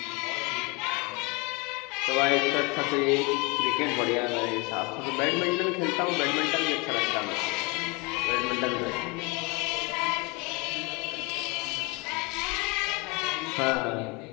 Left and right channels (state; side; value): quieter; right; 28.0 dB